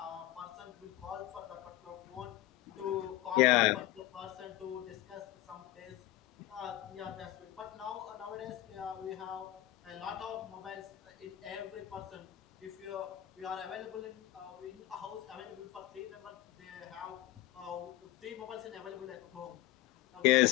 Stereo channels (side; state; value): right; quieter; 15.8 dB